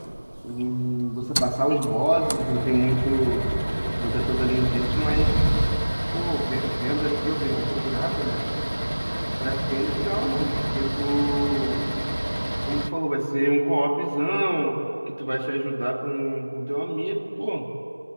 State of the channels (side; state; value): both; inverted; correlation -1.00